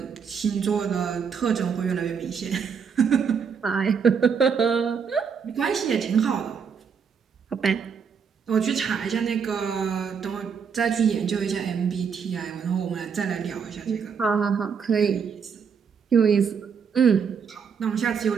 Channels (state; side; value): quieter; left; 6.5 dB